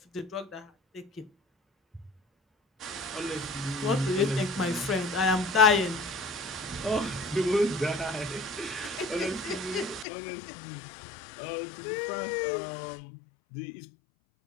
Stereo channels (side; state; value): right; drops out; at 10.1 s